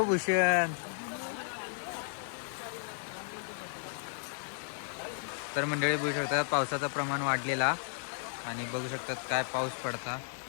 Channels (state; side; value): silent; right; digital silence